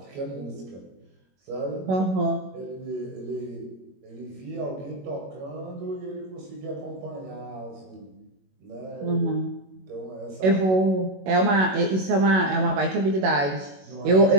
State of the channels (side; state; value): left; late; 21 ms